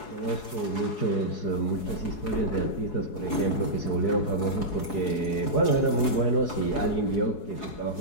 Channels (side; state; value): right; late; 4.7 ms